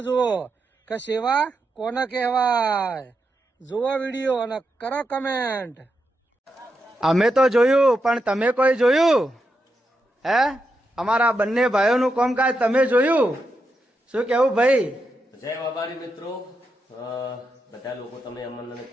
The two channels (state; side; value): normal; both; correlation 0.85